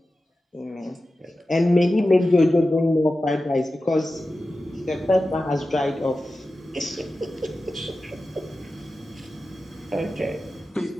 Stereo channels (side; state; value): both; normal; correlation 0.93